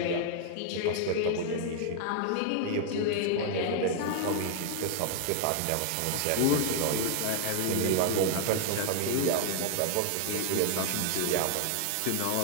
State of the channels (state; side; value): different; both; correlation 0.00